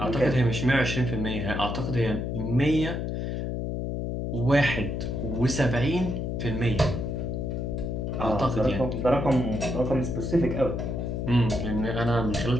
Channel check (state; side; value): noise; left; hum, 2 dB below the sound